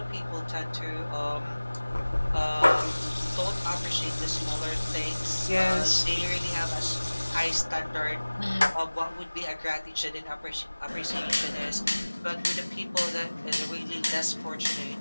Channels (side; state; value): both; inverted; correlation -1.00